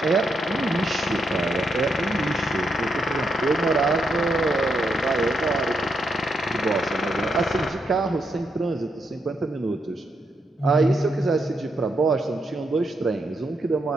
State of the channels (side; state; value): both; normal; correlation 0.79